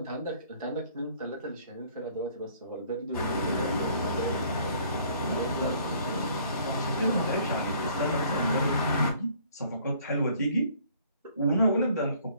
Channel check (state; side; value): inverted; both; correlation -0.59